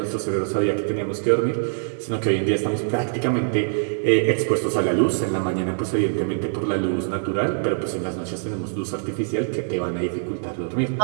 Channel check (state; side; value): silent; left; 63 dB below the other